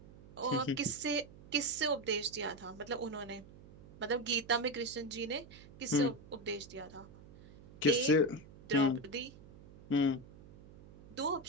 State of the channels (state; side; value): noise; right; hum, 20 dB below the sound